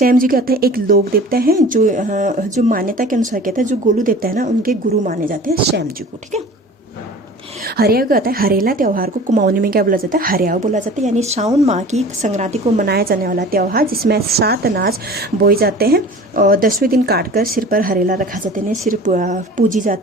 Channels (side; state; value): both; normal; correlation 0.42